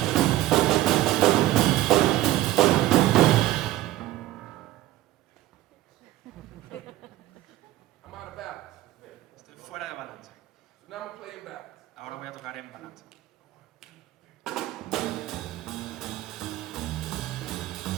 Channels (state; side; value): quieter; left; 15.4 dB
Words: I'm out of balance. Estoy fuera de balance. So now I'm gonna play in balance. Ahora voy a tocar en balance.